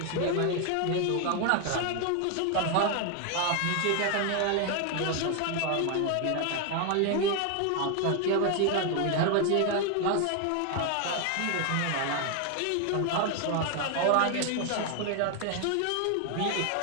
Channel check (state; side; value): different; both; correlation 0.01